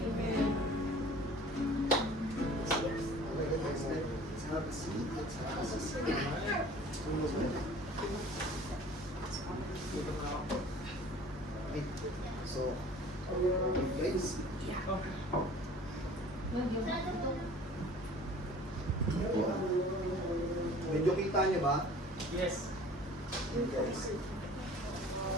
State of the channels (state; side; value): normal; both; correlation 0.47